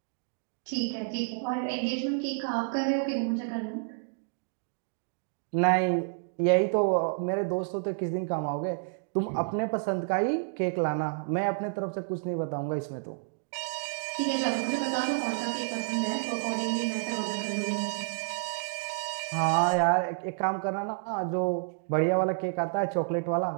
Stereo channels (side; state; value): left; silent; digital silence